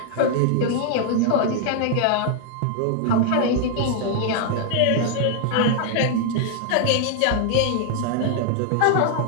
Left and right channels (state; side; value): different; both; correlation 0.00